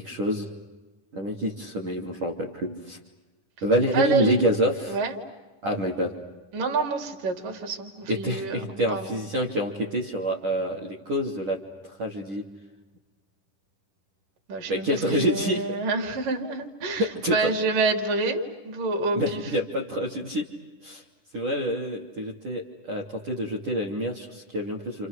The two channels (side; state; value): left; late; 10 ms